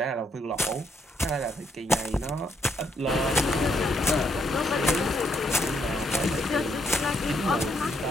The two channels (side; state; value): both; normal; correlation 0.74